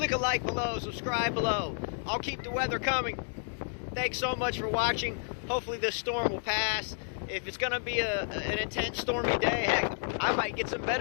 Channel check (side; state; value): right; silent; 57 dB below the other